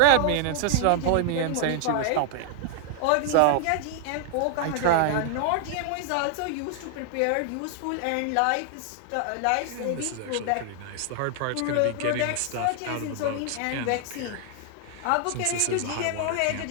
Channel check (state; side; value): different; both; correlation 0.00